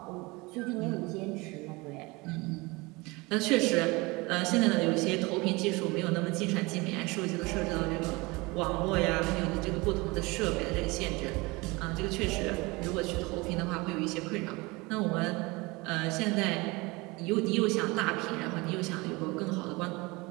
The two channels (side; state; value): left; quieter; 24.4 dB